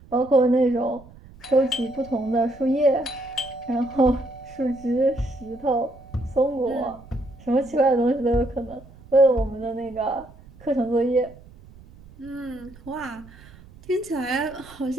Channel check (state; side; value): noise; right; rumble, 22 dB below the sound